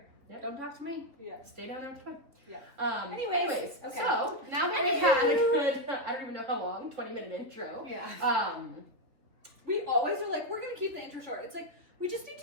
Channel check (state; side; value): late; left; 3.3 ms